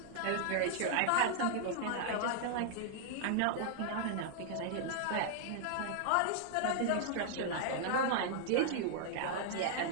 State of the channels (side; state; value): both; different; correlation -0.01